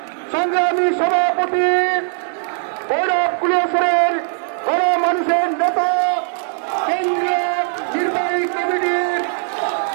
সংগ্রামী সভাপতি ভৈরব কুলিয়াসরের গণমানুষের নেতা কেন্দ্রীয় নির্বাহী কমিটির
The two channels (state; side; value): silent; left; 67 dB below the other